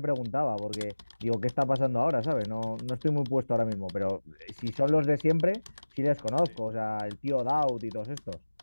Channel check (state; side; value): inverted; both; correlation -1.00